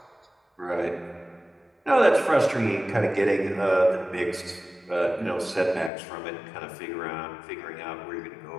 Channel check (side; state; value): right; drops out; at 5.9 s